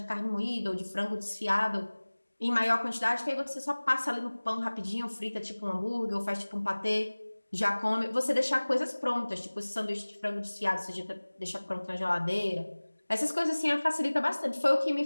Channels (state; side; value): inverted; both; correlation -1.00